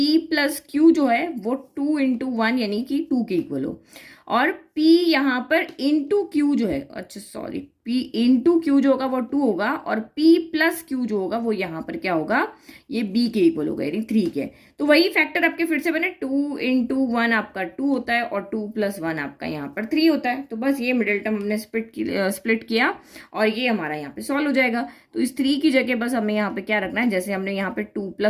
+ Q जो है वो 2 × 1 यानी कि 2 के इक्वल हो, और P यहाँ पर इंटू Q जो है, अच्छा सॉरी P इंटू क्यू जो होगा वो 2 होगा, और P प्लस क्यू जो होगा वो यहाँ पर क्या होगा, ये B के इक्वल होगा, यानी 3 के। तो वही फैक्टर आपके फिर से बने, 2 इंटू 1 आपका 2 होता है, और 2 प्लस 1 आपका यहाँ पर 3 होता है। तो बस ये मिडिल टर्म हमने स्प्लिट किया, और ये हमारा यहाँ पे सॉल्व हो जाएगा। तो इस 3 की जगह बस हमें यहाँ पे क्या रखना है, जैसे हमने यहाँ पे 2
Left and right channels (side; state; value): both; identical; correlation 1.00